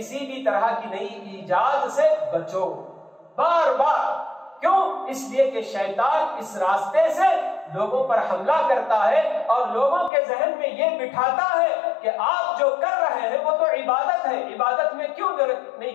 بھی طرح کی نئی ایجاد سے بچو، بار بار۔ کیوں؟ اس لیے کہ شیطان اس راستے سے لوگوں پر حملہ کرتا ہے اور لوگوں کے ذہن میں یہ بٹھاتا ہے کہ آپ جو کر رہے ہیں وہ تو عبادت ہے، عبادت میں کیوں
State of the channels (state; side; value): drops out; right; at 10.1 s